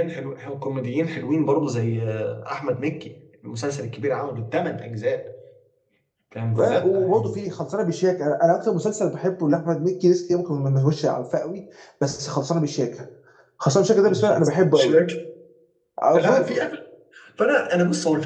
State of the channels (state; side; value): identical; both; correlation 1.00